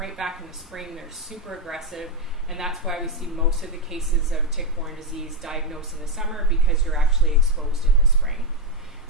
back in the spring, they're super aggressive, and that's why we see most of the cases of tick-borne disease diagnosed in the summer, because you're actually exposed in the spring.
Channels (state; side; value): normal; both; correlation 0.05